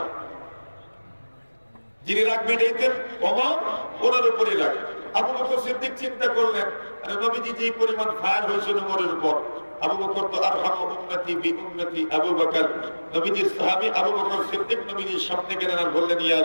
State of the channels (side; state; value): both; inverted; correlation -1.00